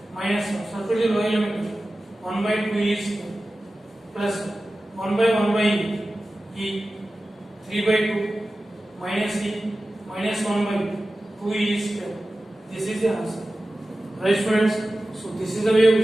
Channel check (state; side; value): normal; both; correlation 0.95